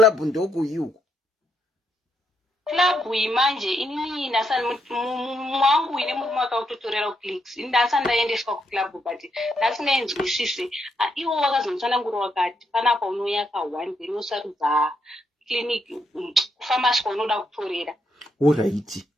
ndo kuyuko. Club imanje inini nasani mwangu ine murume akautotorera clicks ndasani ndaendeswa kuclub but ndasingaenzwisise iwo wakazonditsanangura wakati panapa unouya ka1 then wosarudza clinic kufamasi kwaunoda kutorera. Alright.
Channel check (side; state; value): both; normal; correlation 0.78